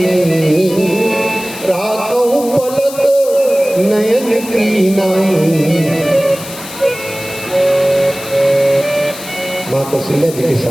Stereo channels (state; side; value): noise; left; hiss, 13 dB below the sound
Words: राखो पलक नयन की नाई। माँ कौशल्या जी के